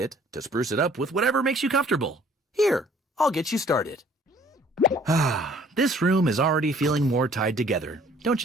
to spruce it up with whatever makes you comfortable. Here, I'll get you started. Ah, this room is already feeling more tied together, don't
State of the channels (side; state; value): both; normal; correlation 0.57